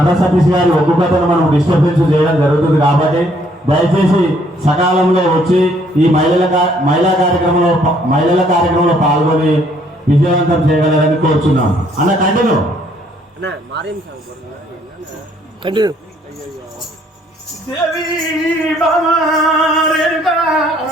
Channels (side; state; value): both; normal; correlation 0.65